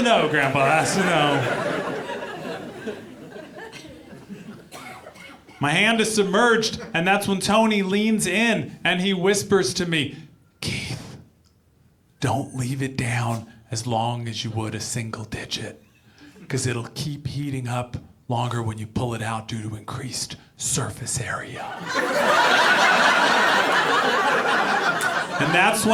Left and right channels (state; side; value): identical; both; correlation 1.00